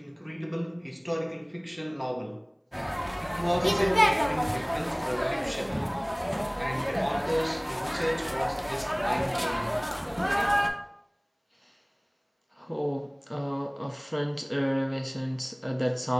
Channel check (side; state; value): both; identical; correlation 1.00